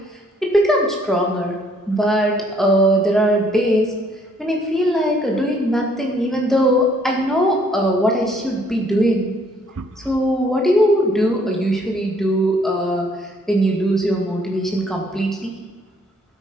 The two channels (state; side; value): normal; both; correlation 0.64